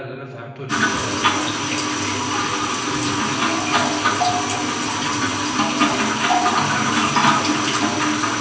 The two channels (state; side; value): identical; both; correlation 1.00